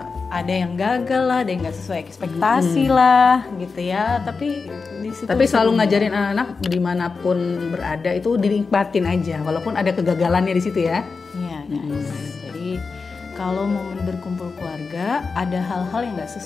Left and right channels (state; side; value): quieter; right; 4.6 dB